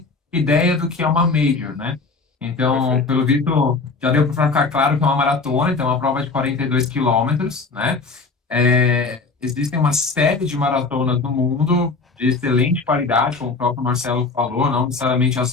ideia do que é uma major, né? Então, Perfeito. pelo visto, já deu para ficar claro que é uma maratona, então é uma prova de 42 quilômetros, né? Existem uma série de maratonas no mundo de excelente qualidade, como o próprio Marcelo falou, não necessariamente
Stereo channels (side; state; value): right; quieter; 4.1 dB